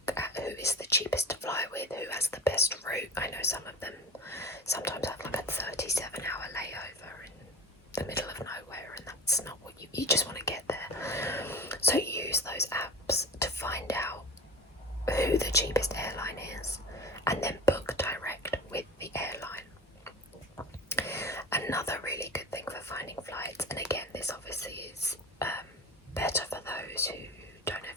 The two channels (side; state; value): both; normal; correlation 0.34